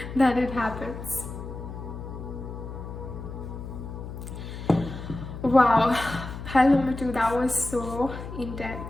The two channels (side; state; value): left; noise; hum, 9 dB below the sound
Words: that it happens. Wow, pile number 2, that was so